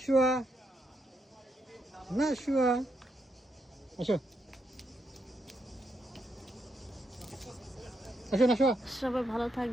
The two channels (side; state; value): both; normal; correlation 0.81